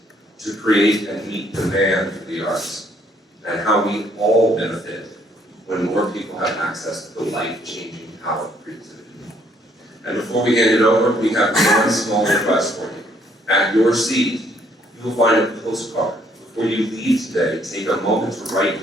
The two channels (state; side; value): normal; both; correlation 0.66